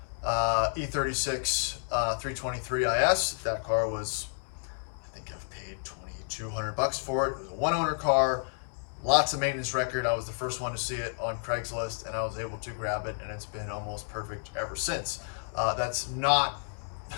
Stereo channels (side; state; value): right; silent; digital silence